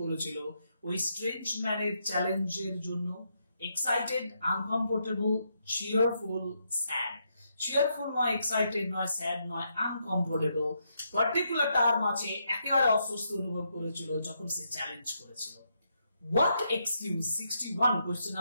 করেছিল ওই স্ট্রেঞ্জ ম্যানের চ্যালেঞ্জের জন্য? excited, uncomfortable, cheerful, sad। cheerful নয়, excited নয়, sad নয়, uncomfortable, পার্টিকুলার টার্ম আছে, একেবারে অস্বস্তি অনুভব করেছিল যখন সে চ্যালেঞ্জ করেছিল। what excuse, 61, question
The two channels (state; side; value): inverted; both; correlation -0.79